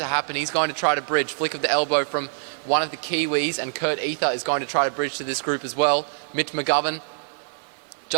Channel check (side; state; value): left; silent; digital silence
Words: happen. He's going to try to bridge. Flick of the elbow from one of the Kiwis, and Kurt Ether is going to try to bridge to this group as well. Mitch McGovern